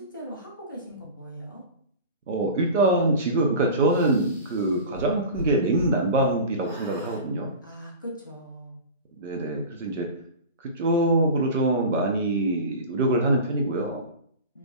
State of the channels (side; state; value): both; inverted; correlation -0.32